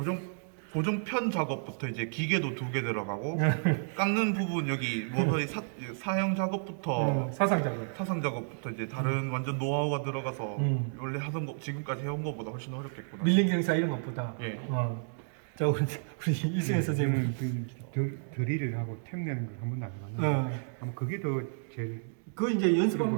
고정편 작업부터 이제 기계도 2개 들어가고 깎는 부분 여기 모서리 사형 작업부터 사상 작업. 사상 작업부터 이제 다른 완전 노하우가 들어가서 원래 하던 거 지금까지 해온 거보다 훨씬 어렵겠구나. 밀린 경사 이런 것보다. 예. 자, 우리 이승현 선생님은 드릴을 하고 템 내는 걸 한 번도 안 해봤는데 아마 그게 더 제일 그거 이제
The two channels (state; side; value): silent; left; digital silence